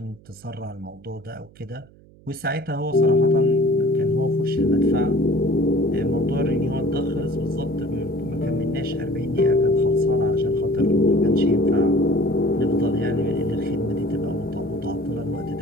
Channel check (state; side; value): noise; right; hum, 25 dB below the sound